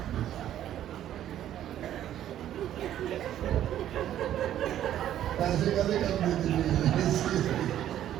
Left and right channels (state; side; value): quieter; left; 11.6 dB